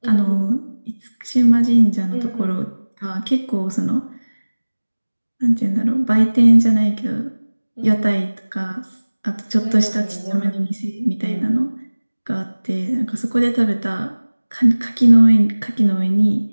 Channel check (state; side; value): inverted; both; correlation -1.00